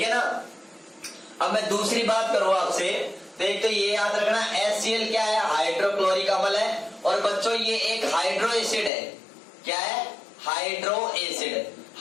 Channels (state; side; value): drops out; right; at 8.9 s